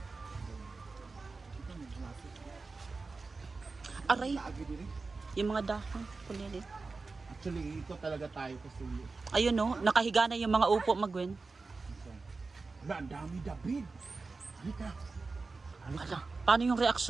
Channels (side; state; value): left; quieter; 4.0 dB